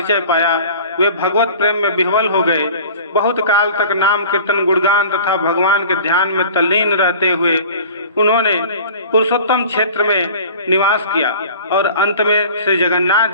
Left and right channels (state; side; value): inverted; both; correlation -0.43